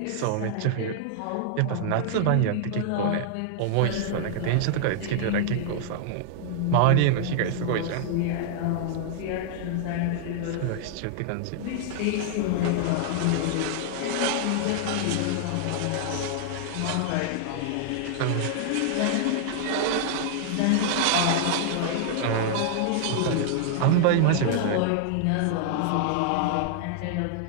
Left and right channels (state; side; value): different; both; correlation -0.01